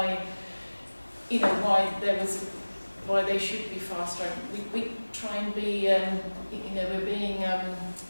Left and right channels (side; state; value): both; inverted; correlation -1.00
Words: why they should be fast tracked. We try and be we're being